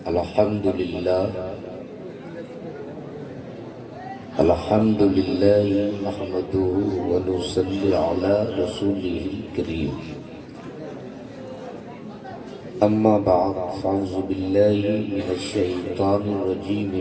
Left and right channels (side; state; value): both; identical; correlation 1.00